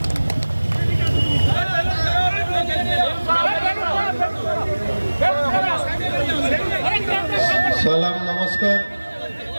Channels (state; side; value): inverted; both; correlation -1.00